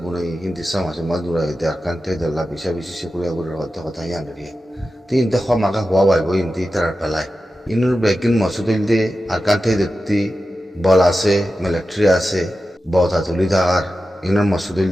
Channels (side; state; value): both; normal; correlation 0.92